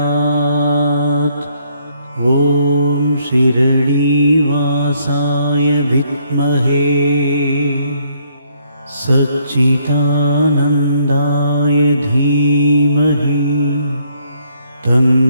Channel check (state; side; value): inverted; both; correlation -0.69